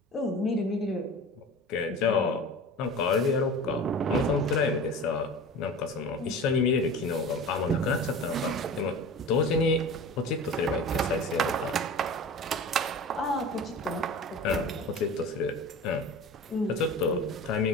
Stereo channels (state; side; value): normal; both; correlation 0.36